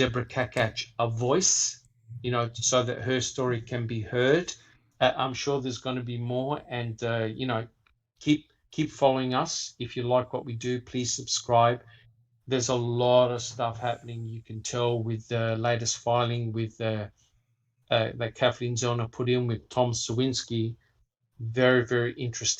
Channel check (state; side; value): identical; both; correlation 1.00